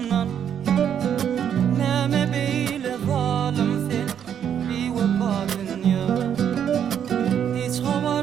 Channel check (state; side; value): quieter; left; 8.8 dB